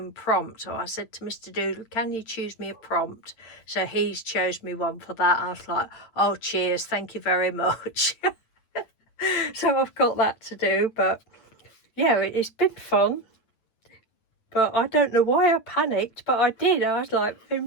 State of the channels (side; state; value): right; late; 9.0 ms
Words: prompt. So I said to Mr. Doodle, can you choose me a prompt? So he's chose me one for that. I was like, oh cheers, thank you very much. So I've got that to do, but yeah, it's been fun. But I don't know why I panicked, but I did. I was like